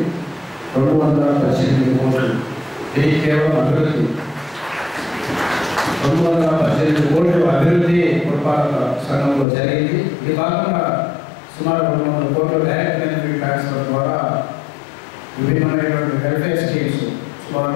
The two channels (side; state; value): right; drops out; at 9.5 s